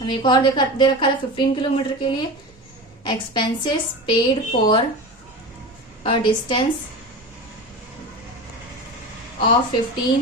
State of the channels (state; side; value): normal; both; correlation 0.28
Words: एक और दे रखा था 15 किलोमीटर के लिए, expenses paid for a distance of